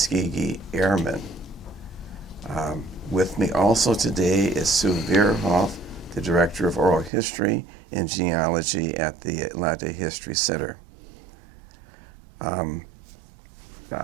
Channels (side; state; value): left; drops out; at 7.1 s